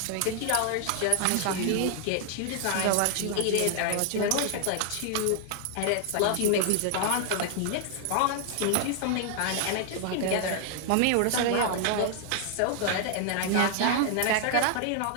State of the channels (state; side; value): different; both; correlation 0.00